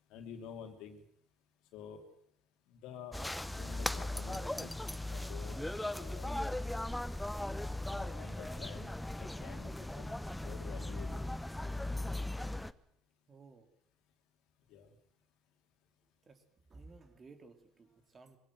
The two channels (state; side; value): normal; both; correlation 0.96